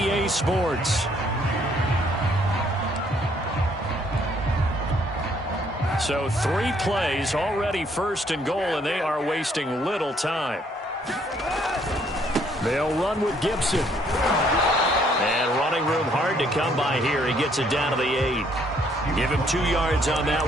Sports. So 3 plays, already 1st and goal, and they are wasting little time. They'll run with Gibson. And running room hard to come by here. He gets it down to the 8. Give him 2 yards on that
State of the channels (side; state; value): both; normal; correlation 0.66